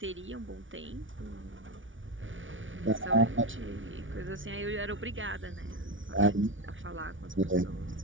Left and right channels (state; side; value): late; left; 0.56 ms